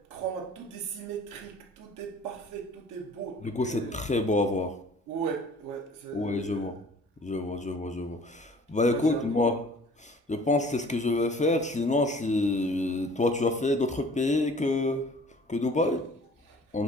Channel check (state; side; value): normal; both; correlation 0.50